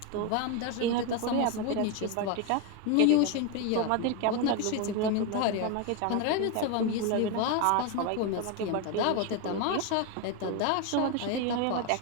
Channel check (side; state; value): both; different; correlation 0.02